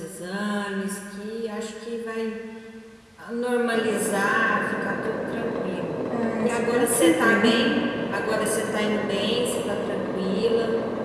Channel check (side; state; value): both; identical; correlation 1.00